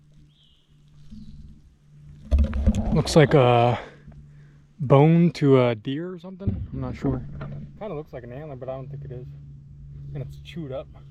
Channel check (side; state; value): both; identical; correlation 1.00